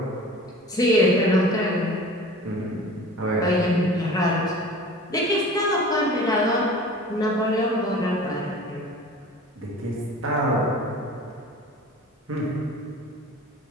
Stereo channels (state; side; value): normal; both; correlation 0.41